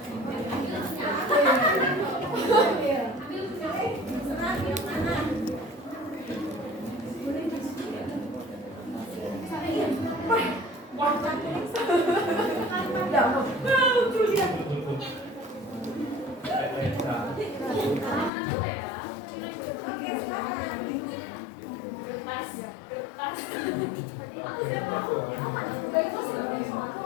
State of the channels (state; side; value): drops out; right; at 18.3 s